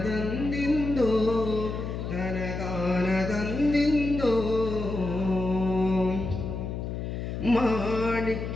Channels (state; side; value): noise; left; hum, 5 dB below the sound